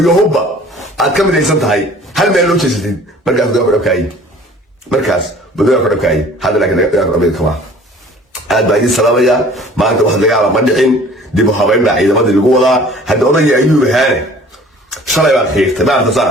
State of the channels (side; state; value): both; normal; correlation 0.49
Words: hubba aad ka midaysan tahay hal meel loo jeesatid markaas dagaalku dhab ka ayay markaas dagaalku dhab ka ayay hadda laakiin dagaalku dhab kama aad baa idin salaamayaa maanta wax dagaala ma dhicin dib u habeyn baa ciidamadii lagu wadaa hadda odagii ayuu ahaane shalay baad xiirtay maanta